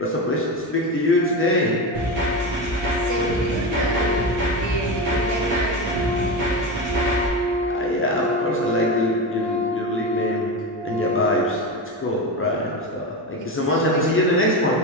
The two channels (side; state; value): both; normal; correlation 0.19